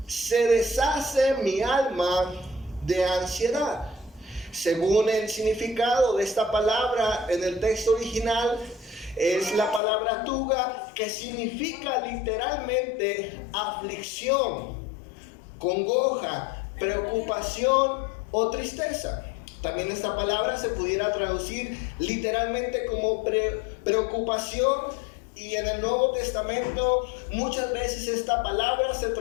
se deshace mi alma de ansiedad. Según el significado de esta palabra en el texto original, es la palabra tuga, que significa literalmente aflicción, congoja, preocupación o tristeza. También esta palabra se pudiera traducir literalmente como preocupación, y en el Nuevo Testamento muchas veces esta palabra se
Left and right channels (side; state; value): right; drops out; at 9.8 s